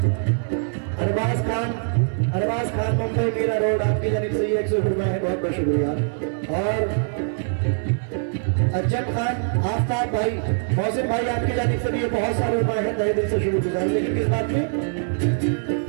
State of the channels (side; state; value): left; silent; 63 dB below the other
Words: अरबाज खान मुंबई मीरा रोड आपकी जानिब से ये 100 रुपए है, बहुत बहुत शुक्रिया। और अज्जम खान आफ्ताब भाई मौसिम भाई आपकी जानिब से भी ये बहुत सारे रुपए हैं, तहे दिल से शुक्रगुजार। लेकिन किस बात में?